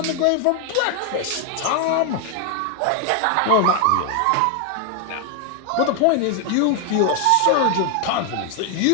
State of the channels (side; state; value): both; different; correlation 0.01